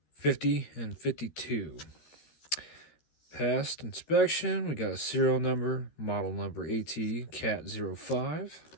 50 and 52. Passed inspection. We got a serial number, model number A.T. C.A.T. 05.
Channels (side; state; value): right; late; 13 ms